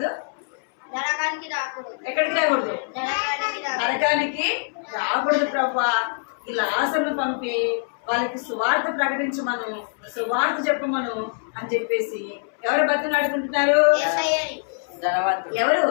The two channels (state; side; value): silent; right; 62 dB below the other